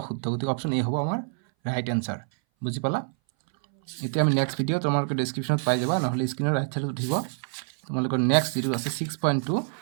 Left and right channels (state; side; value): silent; left; 59 dB below the other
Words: অশুদ্ধ গতিকে অপশন এ হ'ব আমাৰ ৰাইট আনসাৰ বুজি পালা এতিয়া আমি নেক্সট ভিডিও তোমালোকে ডেসক্ৰিপশনত পাই যাবা নহলে স্ক্ৰিনৰ ৰাইট সাইডত উঠিব তোমালোকৰ নেক্সট যিটো আছে